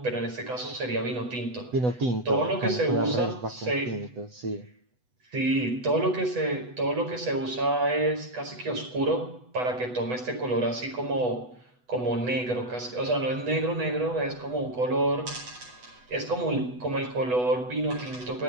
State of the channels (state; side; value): late; left; 8.1 ms